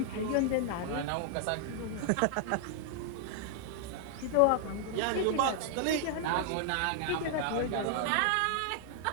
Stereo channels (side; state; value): both; different; correlation 0.00